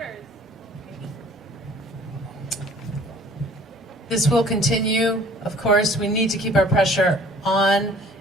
This will continue, of course. We need to keep our pressure on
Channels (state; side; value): normal; both; correlation 0.51